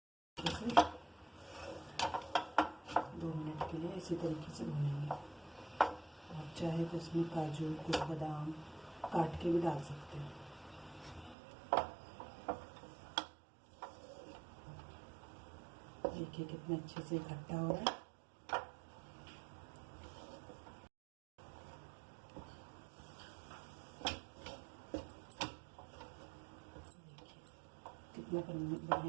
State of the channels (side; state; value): left; drops out; at 11.4 s